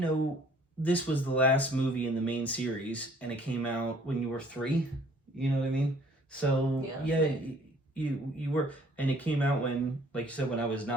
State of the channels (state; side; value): normal; both; correlation 0.57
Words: this was the last movie in the main series, and it came out when you were 3. You know what I mean? So you were, and it came out when, like you said, when I was